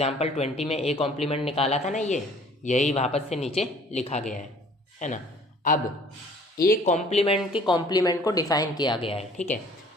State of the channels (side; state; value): both; normal; correlation 0.54